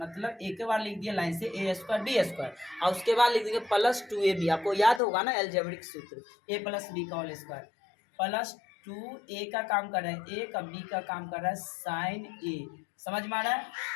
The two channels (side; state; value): right; drops out; at 5.0 s